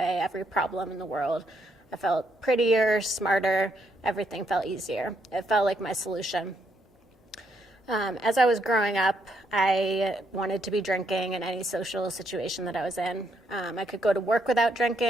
every problem in the world. I felt prettier, smarter, everything felt easier. It felt like my solution. As I was growing up, I wanted to be drinking in any social situation that I was in. I could go to work without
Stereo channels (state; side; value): normal; both; correlation 0.75